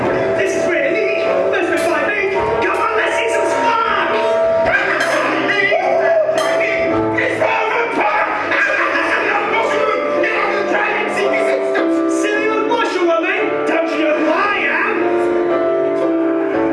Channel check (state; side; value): identical; both; correlation 1.00